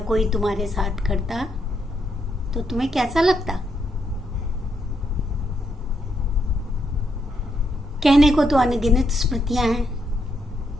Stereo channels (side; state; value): both; normal; correlation 0.78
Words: कोई तुम्हारे साथ करता तो तुम्हें कैसा लगता। कहने को तो अनगिनत स्मृतियां हैं,